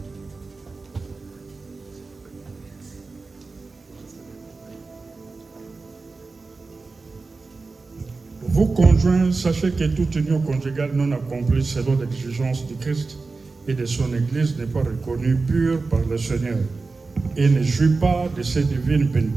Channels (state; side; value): quieter; left; 3.9 dB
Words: Vous conjoints, sachez que toute union conjugale non accomplie selon l'exigence du Christ et de son Église n'est pas reconnue pure par le Seigneur et ne jouit pas de ses divines